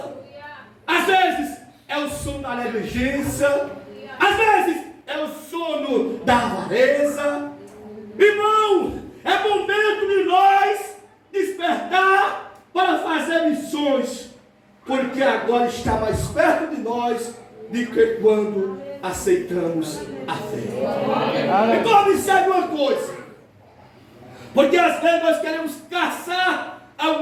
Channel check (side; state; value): both; identical; correlation 1.00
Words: às vezes é o sono da negligência, às vezes é o sono da avareza. Irmão, é momento de nós despertar para fazer missões, porque agora está mais perto de nós do que quando aceitamos a fé. Então observe uma coisa, porque às vezes nós queremos caçar